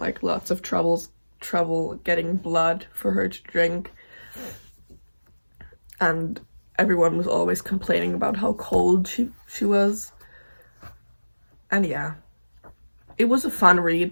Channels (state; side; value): inverted; both; correlation -1.00